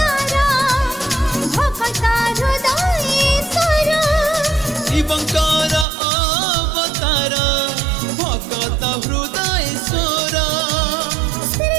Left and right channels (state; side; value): drops out; left; at 5.9 s